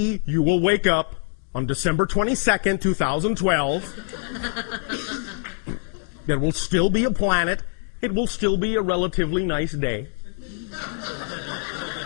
you will wake up on December 22nd, 2012. There will still be a planet. It will still be a relatively nice day.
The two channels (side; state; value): right; silent; 60 dB below the other